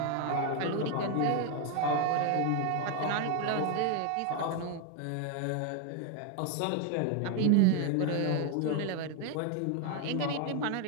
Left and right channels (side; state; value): both; different; correlation 0.01